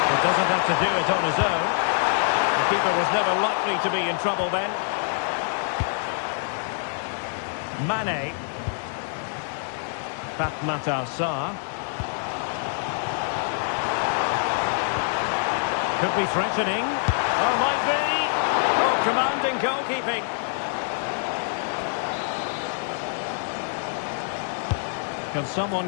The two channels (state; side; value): silent; right; digital silence